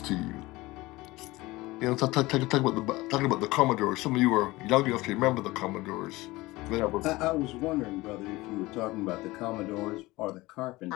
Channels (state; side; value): quieter; right; 20.2 dB